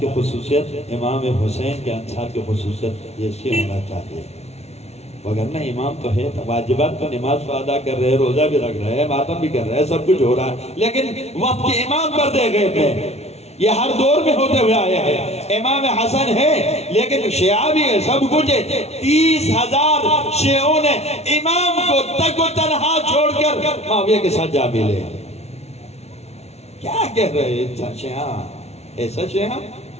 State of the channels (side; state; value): right; late; 0.31 ms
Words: خصوصیت، امام حسین کے انصار کی خصوصیت ایسی ہونا چاہیے، وگرنہ امام تو ہے، واجبات تو نماز کو ادا کر رہے ہیں، روزہ بھی رکھ رہے ہیں، ماتم بھی کر رہے ہیں، سب کچھ ہو رہا ہے، لیکن وقت کے امام پر دے گئے تھے۔ یہ ہر دور میں ہوتے ہوئے آیا ہے۔ امام حسن ہے لیکن شیعہ بھی ہے، سب کچھ ہے۔ 30,000 شیعوں نے امام کو تک و تنہا چھوڑ کر معاویہ کے ساتھ جا ملے۔ کیا کہہ رہے ہیں شیعہ؟ ایسا شیعہ